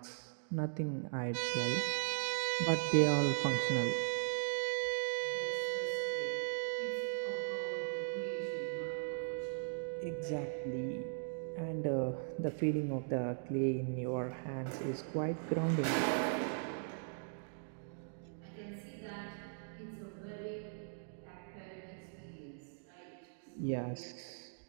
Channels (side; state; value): left; silent; digital silence